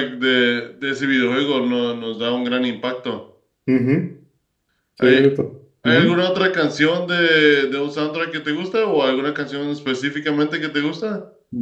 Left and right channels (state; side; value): identical; both; correlation 1.00